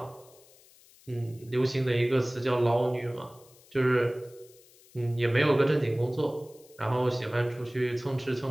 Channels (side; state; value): left; noise; hiss, 26 dB below the sound